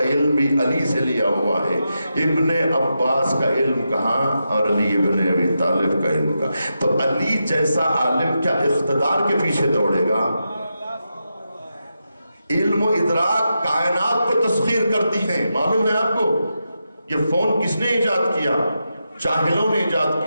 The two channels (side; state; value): both; inverted; correlation -0.87